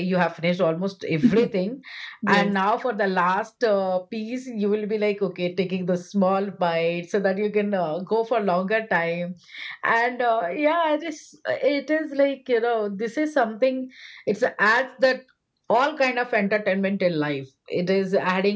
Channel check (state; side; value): identical; both; correlation 1.00